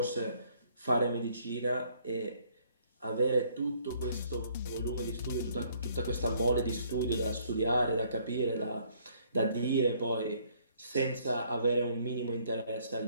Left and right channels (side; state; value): both; inverted; correlation -0.64